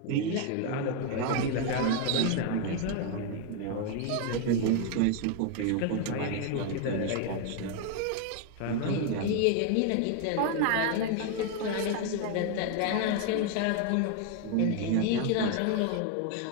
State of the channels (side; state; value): both; different; correlation 0.01